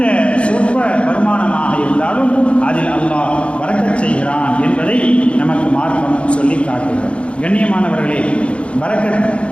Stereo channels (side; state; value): right; late; 0.060 ms